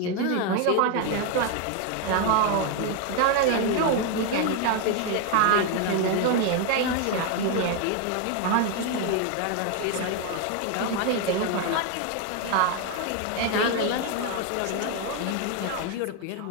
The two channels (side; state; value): both; different; correlation 0.01